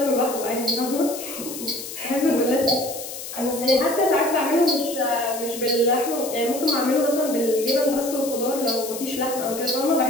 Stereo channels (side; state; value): left; noise; hiss, 10 dB below the sound